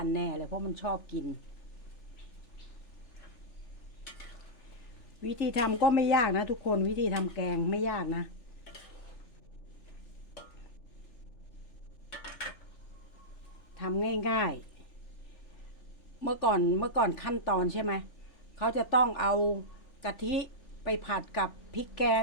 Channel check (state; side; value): late; right; 3.4 ms